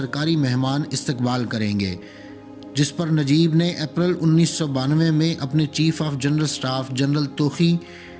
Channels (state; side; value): identical; both; correlation 1.00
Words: مہمان استقبال کریں گے، جس پر نجیب نے اپریل 1992 میں اپنے chief of general staff general توخی،